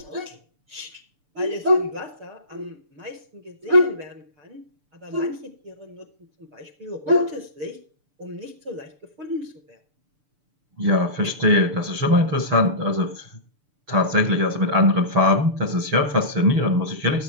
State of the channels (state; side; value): late; left; 6.8 ms